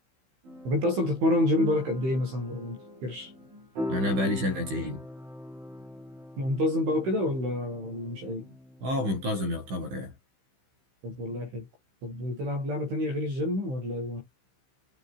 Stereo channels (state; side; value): late; left; 15 ms